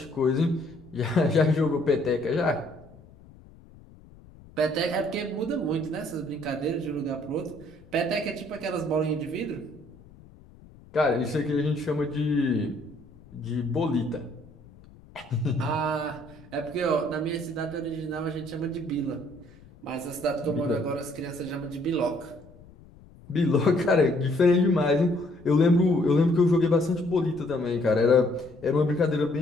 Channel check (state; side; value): noise; left; rumble, 23 dB below the sound